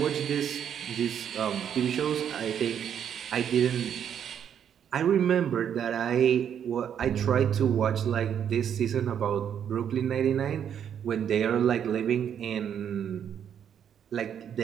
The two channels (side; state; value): left; quieter; 8.8 dB